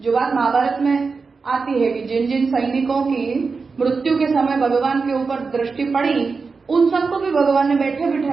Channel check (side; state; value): left; quieter; 4.6 dB